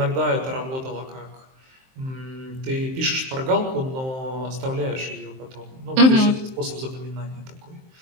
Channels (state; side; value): late; left; 23 ms